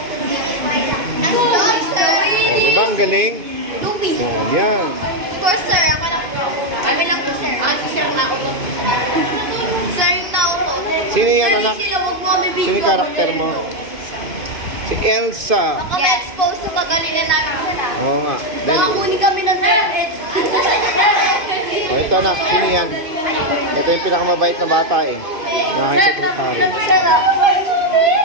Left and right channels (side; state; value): left; late; 2.5 ms